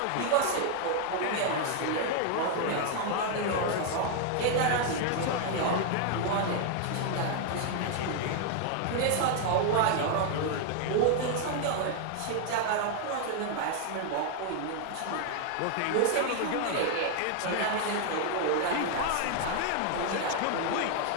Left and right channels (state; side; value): different; both; correlation 0.00